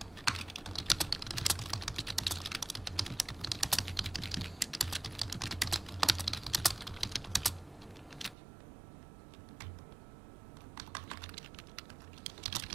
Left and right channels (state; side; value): drops out; left; at 8.3 s